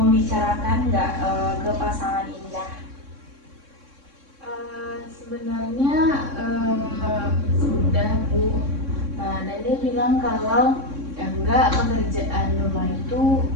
nggak ke pasangan Indah? Sebenarnya sudah Bu, dan dia bilang kalau enggak, pekerjaan rumah itu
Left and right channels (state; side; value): late; left; 3.6 ms